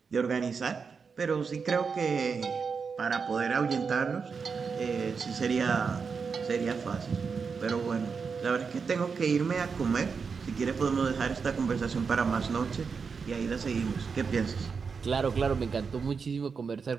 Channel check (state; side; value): quieter; left; 5.5 dB